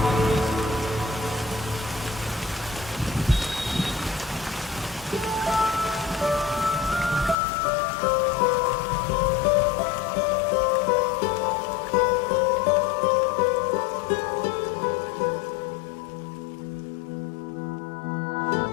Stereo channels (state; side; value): drops out; right; at 7.4 s